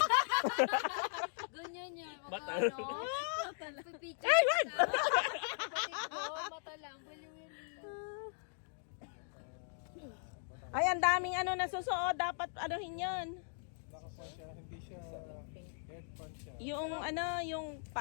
Ganyan yan. Mata. Pipicture ka. Mata lang. Ay, ang daming ano nasusuot. Dapat anuhin yun. Nakapan siya, hindi siya headpan siya. Yung ano, yung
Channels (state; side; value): silent; right; digital silence